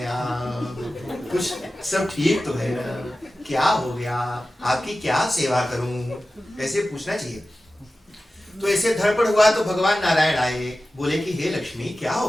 आप? कुछ सब ठीक तो है ना? क्या हो गया? आपकी क्या सेवा करूं? ऐसे पूछना चाहिए। तो ऐसे धड़पड़ हुआ तो भगवान नारायण आए, बोले कि हे लक्ष्मी क्या हो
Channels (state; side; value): normal; both; correlation 0.95